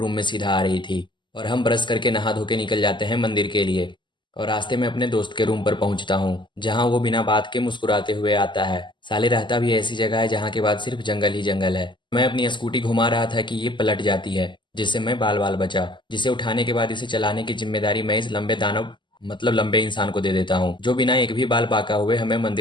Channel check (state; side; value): late; right; 0.23 ms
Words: में सीधा आ रही थी और हम ब्रश करके नहा धो के निकल जाते हैं मंदिर के लिए। और रास्ते में अपने दोस्त के रूम पर पहुंचता हूं, जहां वो बिना बात के मुस्कुराते हुए आता है। साले रहता भी ऐसी जगह है जहां के बाद सिर्फ जंगल ही जंगल है। मैं अपनी स्कूटी घुमा रहा था कि ये पलट जाती है, जिससे मैं बाल बाल बचा। जिसे उठाने के बाद इसे चलाने की जिम्मेदारी मैं इस लंबे दानव मतलब लंबे इंसान को दे देता हूँ, जो बिना एक भी बाल बाका हुए हमें